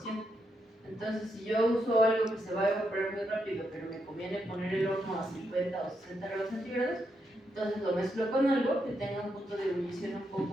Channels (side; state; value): both; normal; correlation 0.81